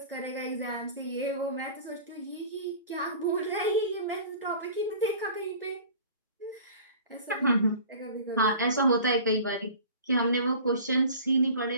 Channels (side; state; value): both; inverted; correlation -0.43